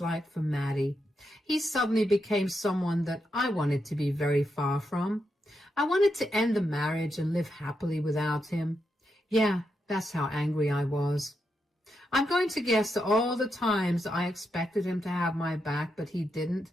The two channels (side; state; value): both; normal; correlation 0.84